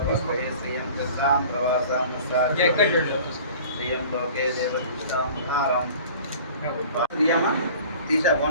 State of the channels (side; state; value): both; inverted; correlation -0.45